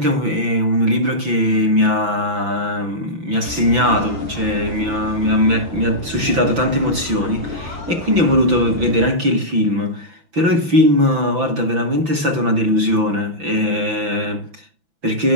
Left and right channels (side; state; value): left; late; 6.0 ms